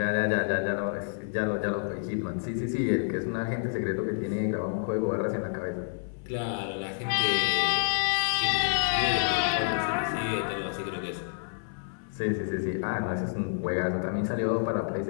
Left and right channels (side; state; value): right; silent; 59 dB below the other